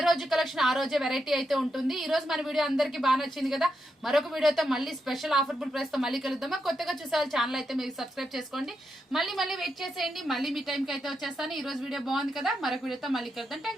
రోజు కలెక్షన్ ఆ రోజే వెరైటీ అయితే ఉంటుంది. ఈ రోజు మన వీడియో అందరికి బాగా నచ్చింది కదా. మరొక వీడియోతో మళ్ళీ స్పెషల్ ఆఫర్బుల్ ప్రైస్ తో మళ్ళీ కలుద్దామా. కొత్తగా చూసే ఛానల్ అయితే మీరు సబ్స్క్రైబ్ చేసుకోండి. మళ్ళీ వెయిట్ చేసేయండి. మళ్ళీ మీ టైంకి అయితే వచ్చేస్తాను. ఈ రోజు వీడియో బాగుంది కదా. మరొక వీడియోతో మళ్ళీ కలుద్దాం.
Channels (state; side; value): normal; both; correlation 0.84